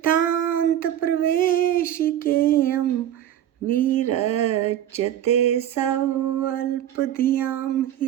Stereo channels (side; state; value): left; quieter; 11.2 dB